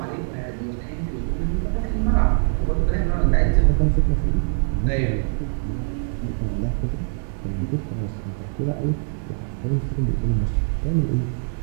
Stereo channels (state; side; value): silent; left; digital silence